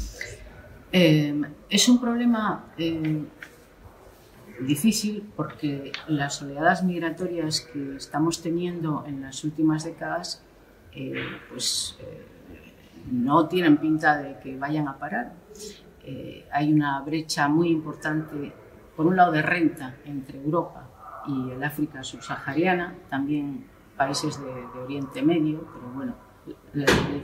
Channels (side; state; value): both; identical; correlation 1.00